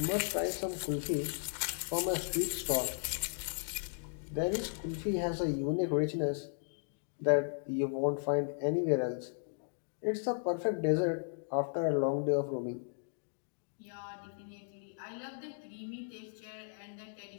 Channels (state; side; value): silent; right; digital silence